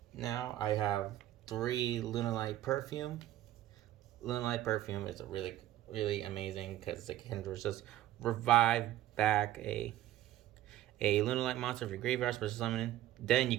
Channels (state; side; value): quieter; left; 13.8 dB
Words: Now I have 3 Lunalight Perfume. Lunalight Perfume is a really, really amazing because it can just revive back a Lunalight monster from your graveyard, special summon. Then you